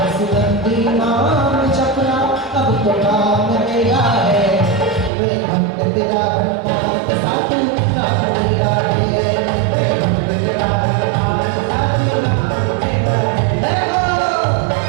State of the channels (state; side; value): drops out; left; at 5.1 s